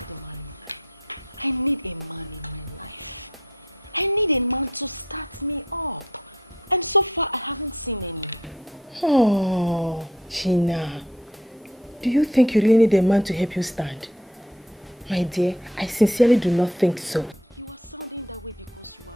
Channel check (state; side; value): normal; both; correlation 0.59